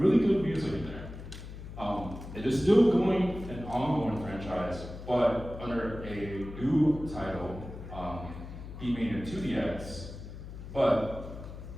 good music in there. It is still going an ongoing franchise, but under a new title, Beat Mania 2DX, but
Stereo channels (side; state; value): left; noise; hum, 11 dB below the sound